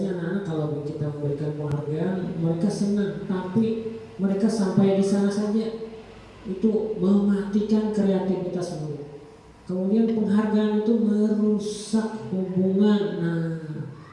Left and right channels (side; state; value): both; identical; correlation 1.00